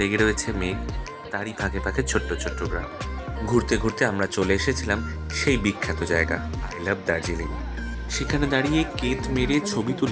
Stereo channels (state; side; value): identical; both; correlation 1.00